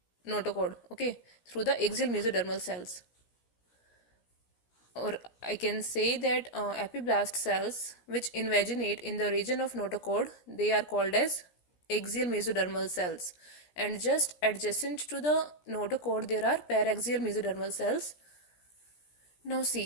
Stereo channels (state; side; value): late; right; 17 ms